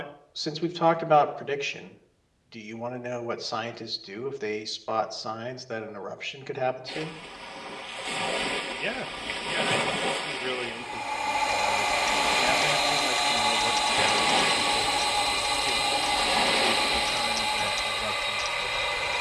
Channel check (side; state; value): both; identical; correlation 1.00